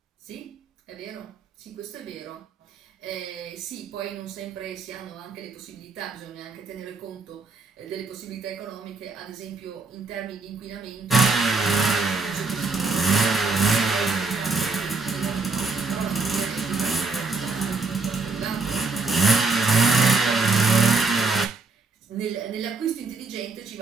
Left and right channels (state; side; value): quieter; left; 4.1 dB